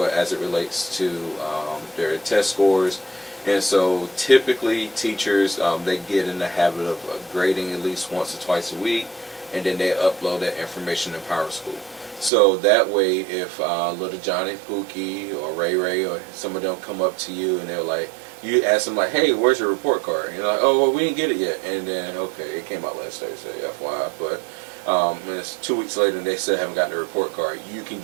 as it relates to their test scores. And so typically teachers, they get in the habit of grading at least once or twice a week, and then they upload that information in Power School. So that way, if little Johnny, Pookie, or Ray Ray, or some of them come up to you and they're like, you ask them like, "Hey, where's your report card?" And you're like, "Oh, well, we didn't get it yet." And then, okay, it came out last Thursday, FYI. But and it's 2 weeks later and they still haven't gotten the report card. You can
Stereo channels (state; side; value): drops out; left; at 12.3 s